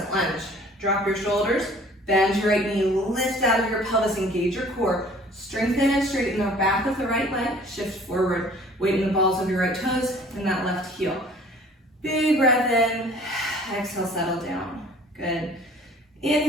lunge. Drop your shoulders, bend your right knee, lift out of your pelvis, engage your core. Strengthen and straighten the back of the right leg. Shift forward. Weight in the balls of your right toes and that left heel. Big breath in. Exhale, settle down. Good.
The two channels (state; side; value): normal; both; correlation 0.52